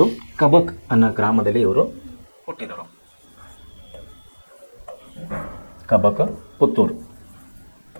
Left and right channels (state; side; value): inverted; both; correlation -1.00